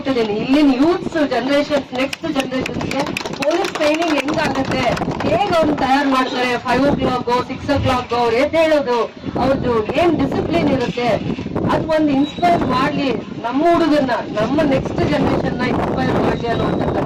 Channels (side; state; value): both; identical; correlation 1.00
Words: ಇಲ್ಲಿನ ಯೂತ್ಸ್ ಜನರೇಷನ್, ನೆಕ್ಸ್ಟ್ ಜನರೇಷನ್ಗೆ ಪೊಲೀಸ್ ಟ್ರೈನಿಂಗ್ ಹೆಂಗಾಗುತ್ತೆ, ಹೇಗೆ ಅವ್ರು ತಯಾರು ಮಾಡ್ತಾರೆ, 5 o'clock 6 o'clock ಅವ್ರು ಹೇಳೋದು, ಅವ್ರದ್ದು ಏನ್ ಡಿಸಿಪ್ಲಿನ್ ಇರುತ್ತೆ, ಅದು ಒಂದು ಇನ್ಸ್ಪೈರ್ ಮಾಡ್ಲಿ ನಮ್ಮ ಹುಡುಗನ್ನ, ನಮ್ಮ ನೆಕ್ಸ್ಟ್ ಜನರೇಷನ್ ನ ಇನ್ಸ್ಪೈರ್ ಮಾಡ್ಲಿ ಅನ್ನುವಂತ